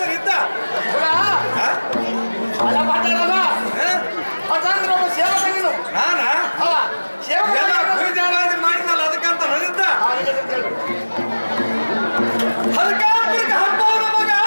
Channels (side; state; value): both; inverted; correlation -1.00